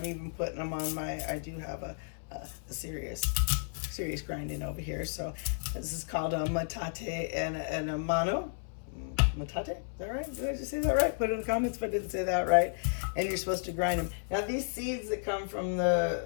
even putting them on I do have a serious grinding over here. So this is called a matate and a mano. Matate? Is that right? Did I just say that right? Put it in the comments if I didn't say that right. And you're supposed to grind them. Now these seeds that come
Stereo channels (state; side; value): silent; right; 56 dB below the other